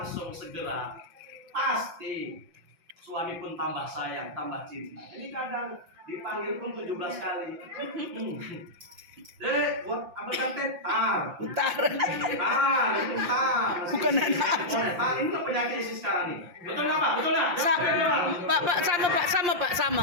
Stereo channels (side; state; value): left; late; 5.8 ms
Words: segera, pasti suami pun tambah sayang, tambah cinta. Ini kadang dipanggil pun 17 kali. Dek, buat ambilkan teh, tar. Bentar. Ini tar. Bukan anak. Tar, ini tuh penyakit isi sekarang nih. Betul nggak Pak? Betul nggak? Pak, sama Pak, sama Pak,